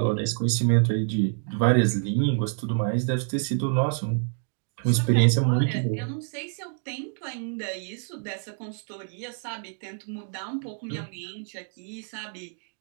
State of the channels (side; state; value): left; silent; 56 dB below the other